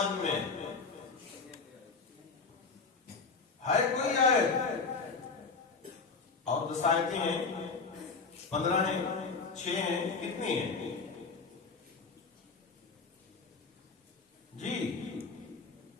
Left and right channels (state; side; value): quieter; right; 4.6 dB